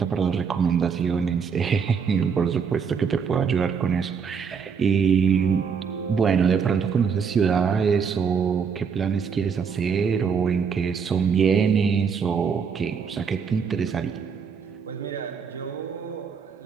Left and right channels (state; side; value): quieter; left; 6.4 dB